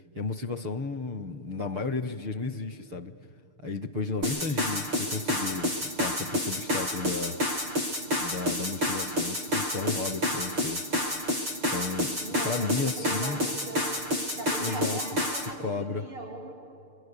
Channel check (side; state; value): left; late; 6.7 ms